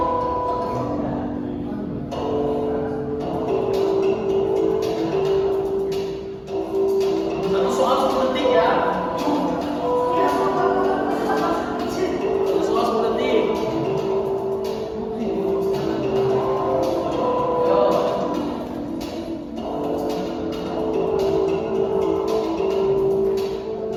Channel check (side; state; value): both; identical; correlation 1.00